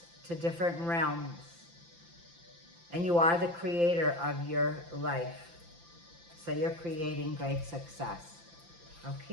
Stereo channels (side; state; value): left; late; 5.9 ms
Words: to different realms. And you are the creator of your life. So you're creating great success.